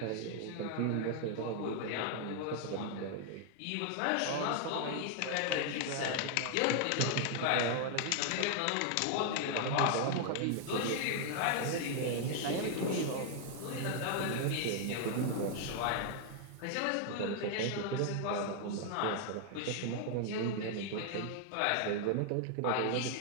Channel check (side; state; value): both; different; correlation 0.00